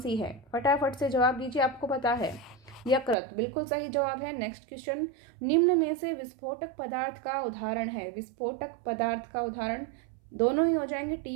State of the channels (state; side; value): drops out; left; at 3.2 s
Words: है? फटाफट से जवाब दीजिए, आपको पता है। यकृत, बिल्कुल सही जवाब है। नेक्स्ट क्वेश्चन, निम्न में से विस्फोटक पदार्थ का उदाहरण है। विस्फोटक पदार्थ का उदाहरण दोनों ही हो जाएंगे,